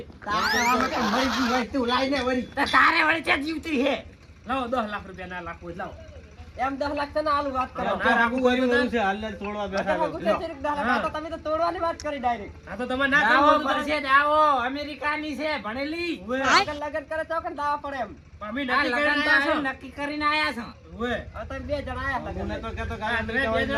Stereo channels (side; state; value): both; identical; correlation 1.00